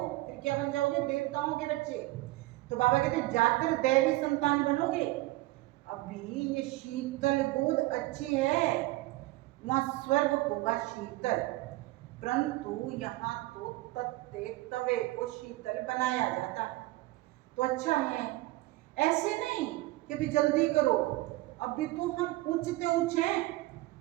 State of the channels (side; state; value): left; quieter; 19.1 dB